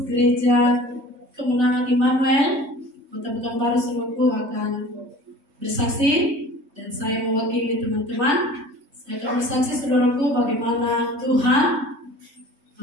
gereja Kemenangan Immanuel Kota Pekanbaru saudaraku akan bersaksi, dan saya mewakili teman-teman. Saya akan bersaksi saudaraku bagaimana Tuhan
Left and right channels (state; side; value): late; left; 3.4 ms